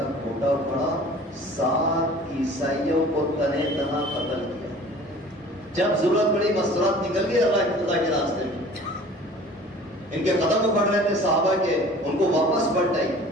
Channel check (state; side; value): normal; both; correlation 0.46